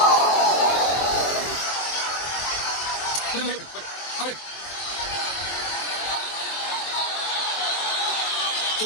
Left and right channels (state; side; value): late; right; 24 ms